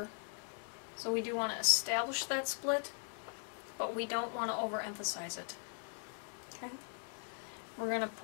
so we do want to establish that split, but we don't want to overemphasize it. Okay, we're going to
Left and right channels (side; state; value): right; silent; 51 dB below the other